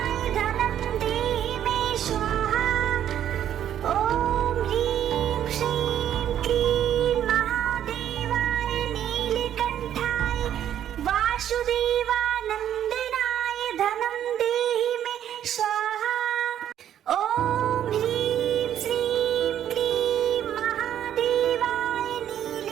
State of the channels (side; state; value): left; quieter; 10.5 dB